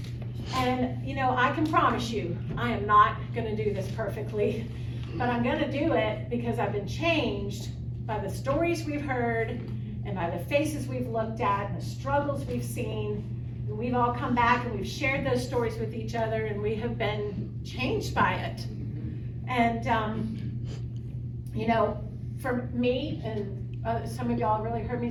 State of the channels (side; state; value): both; identical; correlation 1.00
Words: And you know, I can promise you, I am not gonna do this perfectly, but I'm gonna do it because I've been changed by the stories we've heard and by the faces we've looked at and the struggles we've seen. And we've all come back and we've shared those stories with each other, and we have been changed by it. And you know, for me, and some of y'all really heard me